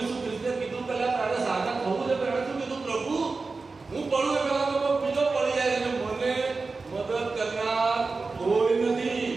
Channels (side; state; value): left; quieter; 4.0 dB